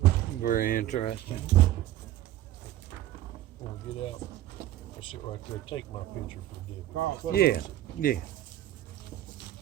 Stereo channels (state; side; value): quieter; left; 13.7 dB